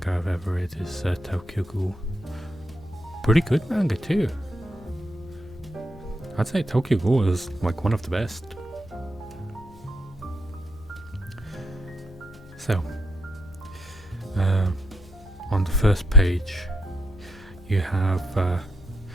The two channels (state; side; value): normal; both; correlation 0.76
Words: I've ever read is Tokyo Ghoul. Pretty good manga too. I'd say Tokyo Ghoul is like one of the best. So, on the first page you have a